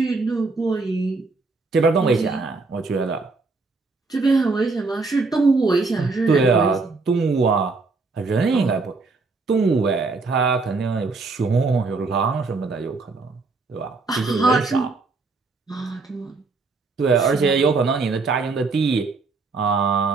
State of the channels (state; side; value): quieter; left; 3.9 dB